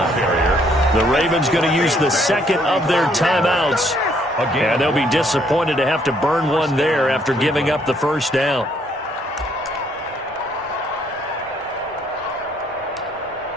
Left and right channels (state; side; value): normal; both; correlation 0.67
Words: The Ravens going to use the 2nd of their timeouts, and they'll be disappointed to have to burn one there after giving up the first down.